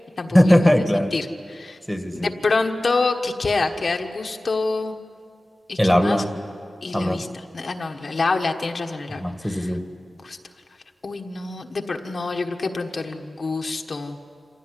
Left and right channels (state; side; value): normal; both; correlation 0.97